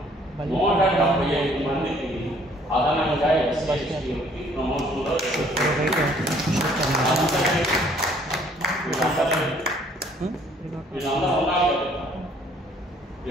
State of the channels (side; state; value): both; normal; correlation 0.60